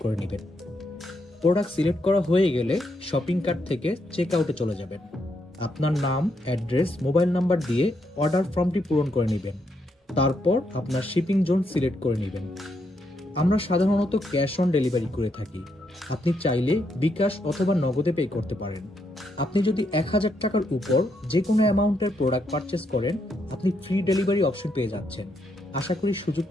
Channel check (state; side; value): normal; both; correlation 0.78